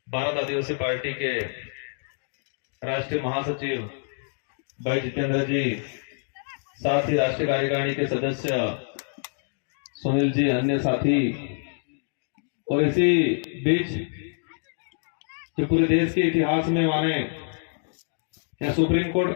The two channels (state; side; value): silent; right; digital silence